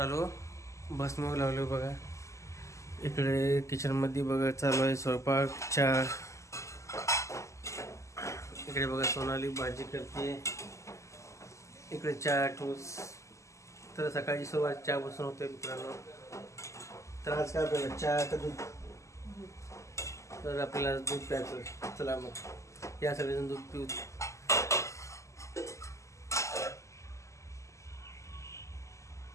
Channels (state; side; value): late; right; 0.15 ms